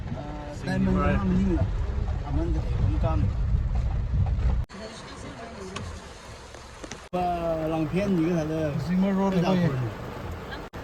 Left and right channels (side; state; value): both; identical; correlation 1.00